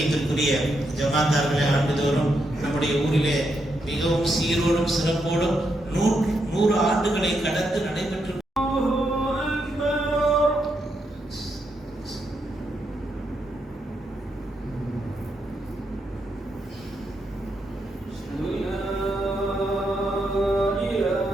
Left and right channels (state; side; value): normal; both; correlation 0.81